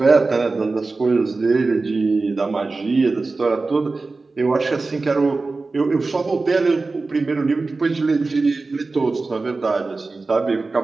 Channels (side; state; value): left; quieter; 3.7 dB